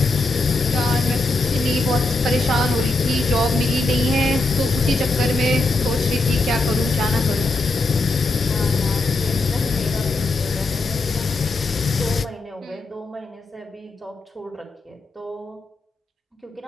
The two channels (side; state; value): right; quieter; 3.2 dB